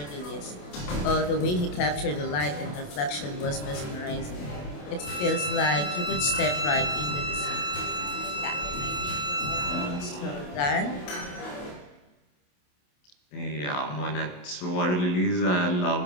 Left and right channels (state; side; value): late; right; 28 ms